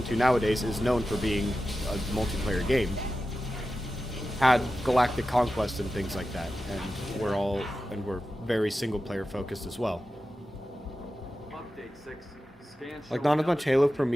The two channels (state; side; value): normal; both; correlation 0.93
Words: 2 nowadays is known for being a multiplayer game, had Galactic Conquest and things like that. And we're very single-player focused as well. Like, not as much Halo for